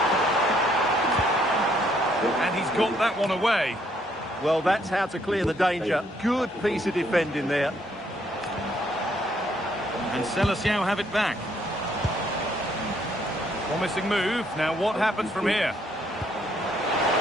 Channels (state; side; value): normal; both; correlation 0.69